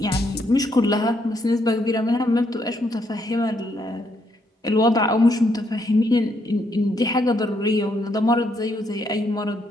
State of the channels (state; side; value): normal; both; correlation 0.74